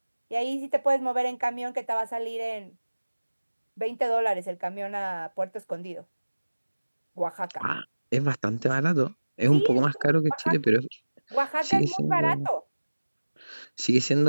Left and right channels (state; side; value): inverted; both; correlation -1.00